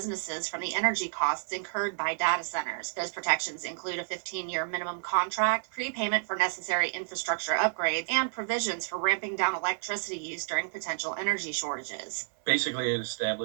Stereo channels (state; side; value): silent; left; digital silence